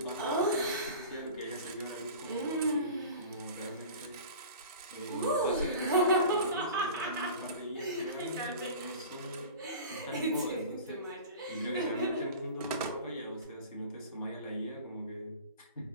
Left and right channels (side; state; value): both; inverted; correlation -0.37